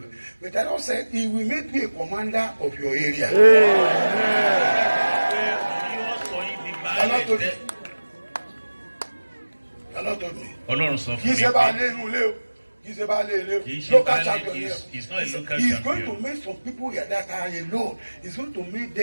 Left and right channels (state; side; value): inverted; both; correlation -1.00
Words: But the Lord said, He will make you a commander of your area. yóò sọ yín di baálẹ̀. The Lord told me. Ọlọ́run sọ Kì í fún mi ṣe bá pé lé inú ilé o. Kì í ṣe bá lé ilé o. kì í ṣe Local baálẹ̀, champion he here. is not a local He's going to champion. make some people here that are alone. He's going to make